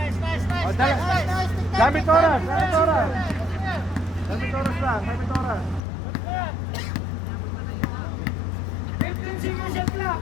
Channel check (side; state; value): right; drops out; at 5.8 s